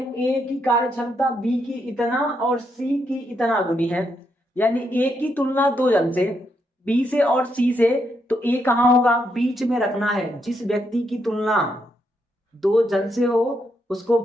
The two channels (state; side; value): normal; both; correlation 0.79